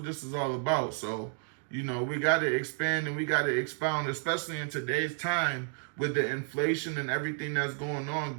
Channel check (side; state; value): left; silent; 57 dB below the other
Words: this is all about. So, we got to expand and we got to expound, especially in today's time with the inflation and everything that's going on,